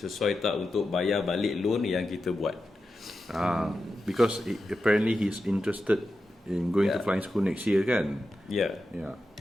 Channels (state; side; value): normal; both; correlation 0.90